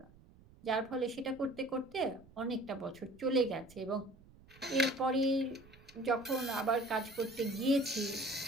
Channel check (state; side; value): noise; right; rumble, 24 dB below the sound